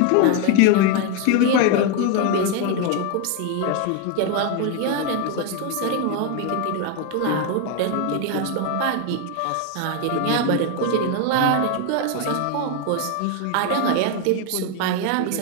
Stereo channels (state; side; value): different; both; correlation 0.01